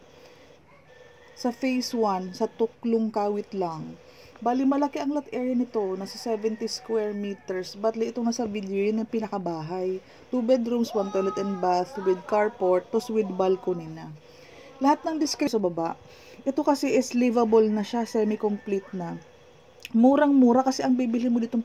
Sa phase 1, sa Tuklong Kawit lang. Bali malaki ang lot area nito, nasa 70 square meters. Batli itong nasa video, yun ang pinakabahay. 2 bedrooms, 1 toilet and bath with carport, tos with balcony na. Lahat ng description sa baba. Ito kasi is livable na siya, semi-complete na. Murang-mura kasi ang bibili mo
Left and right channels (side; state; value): both; identical; correlation 1.00